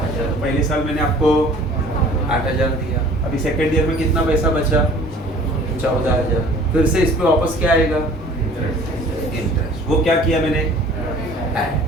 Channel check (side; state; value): both; normal; correlation 0.49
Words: तो पहले साल मैंने आपको 8,000 दिया। अभी सेकेंड ईयर में कितना पैसा बचा 14,000। फिर से इस पे वापस क्या आएगा, इंटरेस्ट। वो क्या किया मैंने,